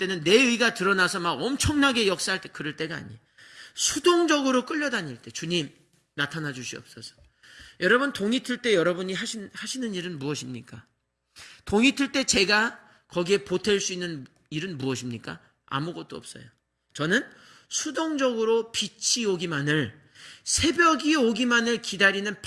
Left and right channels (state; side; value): identical; both; correlation 1.00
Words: 내 의가 드러나서 막 엄청나게 역사할 때 그럴 때가 아니에요. 수동적으로 끌려다닐 때 주님 나타나 주시옵소서. 여러분 동이 틀 때 여러분이 하시는 일은 무엇입니까? 동이 틀 때 제가 거기에 보탤 수 있는 일은 무엇입니까? 아무것도 없어요. 저는 수동적으로 빛이 오기만을 새벽이 오기만을 기다리는